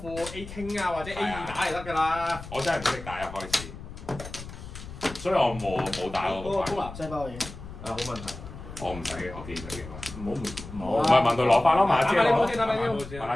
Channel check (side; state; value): left; noise; rumble, 13 dB below the sound